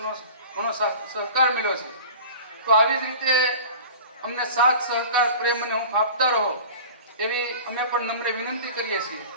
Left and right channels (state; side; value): inverted; both; correlation -0.39